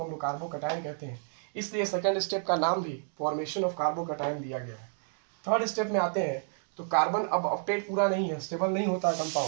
हम लोग कार्बोकटायन कहते हैं, इसलिए सेकंड स्टेप का नाम भी फॉर्मेशन ऑफ कार्बोकटायन दिया गया है। थर्ड स्टेप में आते हैं तो कार्बन अब ऑक्टेट पूरा नहीं है, स्टेबल नहीं होता है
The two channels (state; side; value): silent; left; digital silence